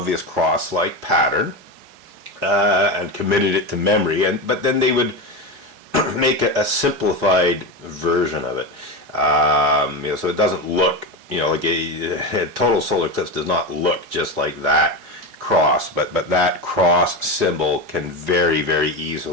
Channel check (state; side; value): late; left; 4.7 ms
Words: cross-like pattern and committed it to memory, but then they would make a simplified version of it. So it doesn't look, like a total solar eclipse does not look just like that cross, but that cross symbol can very, very